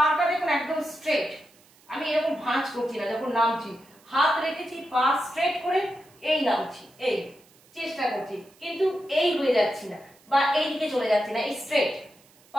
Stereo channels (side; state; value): right; noise; hiss, 29 dB below the sound